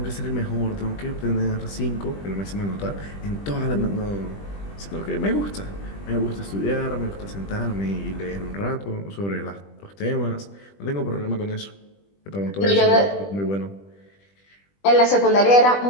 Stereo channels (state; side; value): late; right; 20 ms